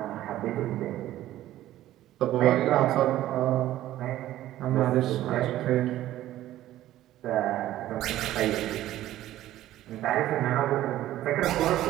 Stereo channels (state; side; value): quieter; left; 14.0 dB